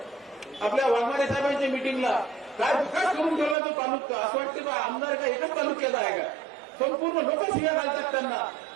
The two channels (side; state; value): left; drops out; at 3.6 s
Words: आपल्या वाघमारे साहेबांच्या मिटिंगला. काय विकास करून ठेवला तो तालुका, असं वाटतं का आमदार का एकच तालुक्यात आहे का? संपूर्ण लोक शिव्या घालतात त्यांना.